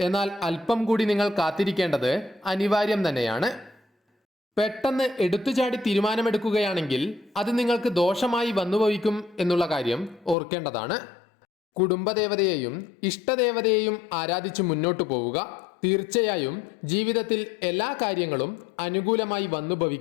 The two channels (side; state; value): right; drops out; at 10.4 s